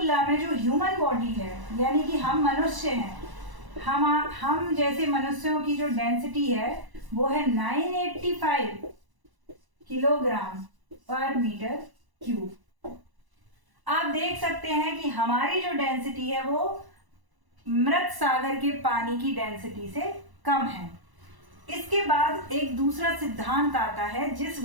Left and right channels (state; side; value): late; left; 1.0 ms